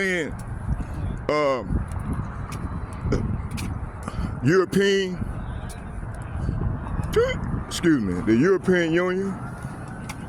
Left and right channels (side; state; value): both; identical; correlation 1.00